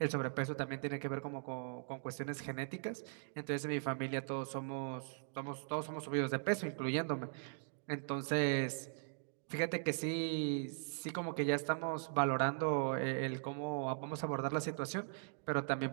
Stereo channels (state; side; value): silent; left; digital silence